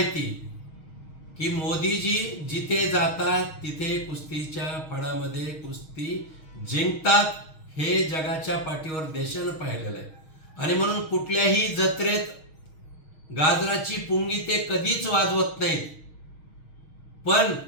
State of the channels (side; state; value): right; late; 6.4 ms